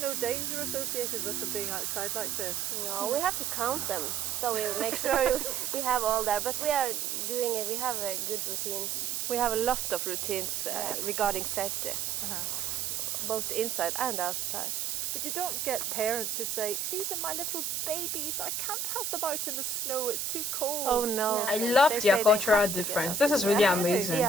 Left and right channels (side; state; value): right; noise; hiss, 1 dB below the sound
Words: danger associated with them being outside like this? No, we have to count them, so we make sure we have all there. But we are doing it, we have good routines. We have a lot of routines regarding safety, both inside and outside. But you don't get parents who say, these are my little babies, I can't have them out in the snow, it's too cold. Oh no. I love their cultural difference. This is really amazing.